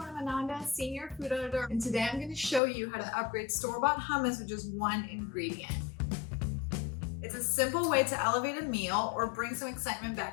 I'm Ananda, Senior Food Editor, and today I'm going to show you how to upgrade store-bought hummus with just one ingredient. It's a simple way to elevate a meal or bring some excitement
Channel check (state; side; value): drops out; right; at 2.6 s